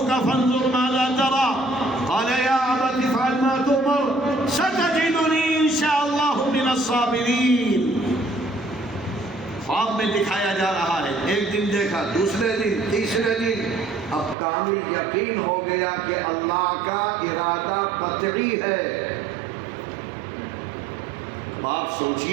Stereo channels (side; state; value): left; drops out; at 14.4 s